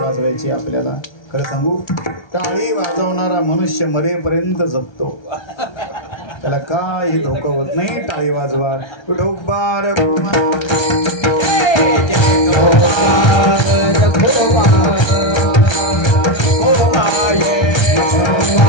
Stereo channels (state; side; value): late; right; 1.3 ms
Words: आपल्याला खरं सांगू, टाळी वाजवणारा मनुष्य मरेपर्यंत जगतो. त्याला काही धोका होत नाही. टाळी वाजवा. विठोबार